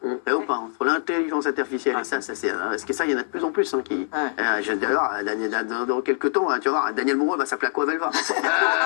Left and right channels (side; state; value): right; silent; digital silence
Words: Ou pas, entre l'intelligence artificielle et ça, c'est parce que ça, il y en a de plus en plus qui. D'ailleurs, dans quelques temps, tu vas voir, Daniel Moreau va s'appeler Aquavelva.